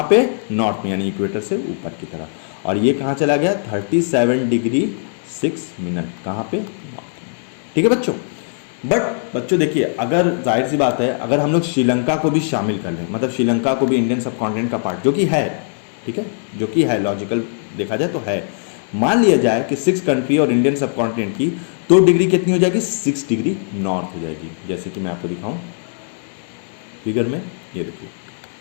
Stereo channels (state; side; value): silent; right; digital silence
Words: पे, नॉर्थ में, यानी इक्वेटर से ऊपर की तरफ। और ये कहाँ चला गया, 37 डिग्री 6 मिनट, कहाँ पे, नॉर्थ में, ठीक है बच्चों। बट बच्चों देखिए अगर जाहिर सी बात है अगर हम लोग श्रीलंका को भी शामिल कर लें, मतलब श्रीलंका को भी इंडियन सब कॉन्टिनेंट का पार्ट, जो कि है, ठीक है, जो कि है, लॉजिकल देखा जाए तो है, मान लिया जाए कि 6 कंट्री और इंडियन सब कॉन्टिनेंट की, तो डिग्री कितनी हो जाएगी, 6 डिग्री नॉर्थ हो जाएगी। जैसे कि मैं आपको दिखाऊं फिगर में, ये देखिए